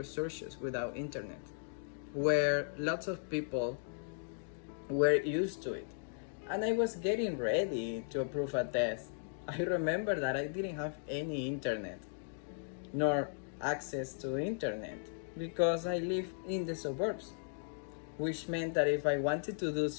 without internet, where lots of people were used to it. And I was getting ready to approve a test. I remember that I didn't have any internet, nor access to internet, because I live in the suburbs, which meant that if I wanted to do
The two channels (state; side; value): silent; right; digital silence